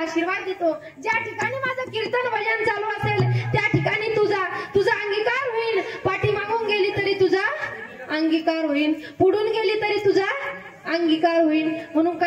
आशीर्वाद देतो. ज्या ठिकाणी माझं कीर्तन भजन चालू असेल त्या ठिकाणी तुझा अंगीकार होईल. पाठी मागून गेली तरी तुझा अंगीकार होईल, पुढून गेली तरी तुझा अंगीकार होईल. म्हणून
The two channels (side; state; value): both; identical; correlation 1.00